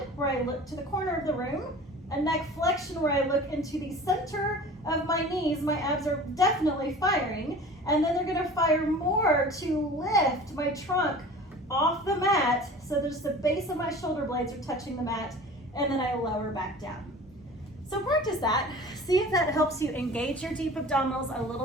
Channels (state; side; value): normal; both; correlation 0.41